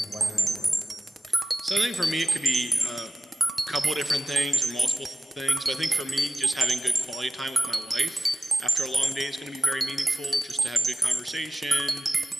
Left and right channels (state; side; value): normal; both; correlation 0.95